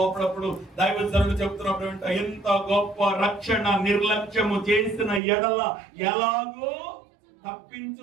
అప్పుడప్పుడు దైవజనులు చెప్తున్నప్పుడు ఎంత గొప్ప రక్షణ నిర్లక్ష్యము చేసిన ఎడల ఎలాగో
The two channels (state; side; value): drops out; left; at 5.2 s